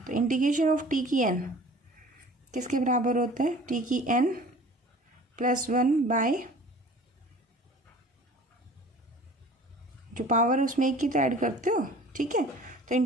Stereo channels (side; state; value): both; normal; correlation 0.46